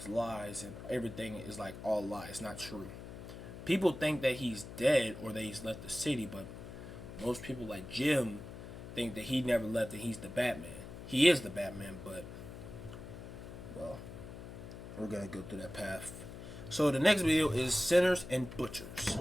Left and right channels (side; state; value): left; noise; hum, 12 dB below the sound